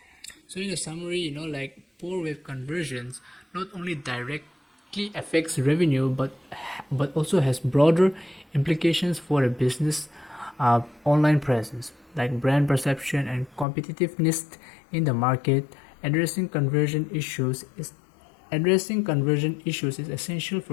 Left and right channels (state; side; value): drops out; right; at 13.7 s